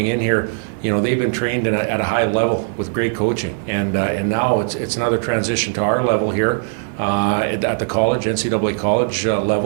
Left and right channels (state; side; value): silent; left; digital silence